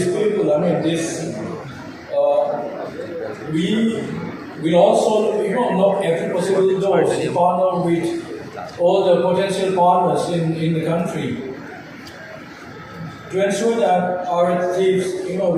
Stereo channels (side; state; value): both; identical; correlation 1.00